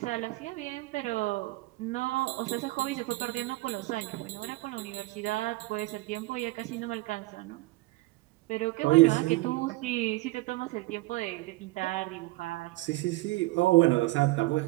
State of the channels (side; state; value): left; quieter; 20.6 dB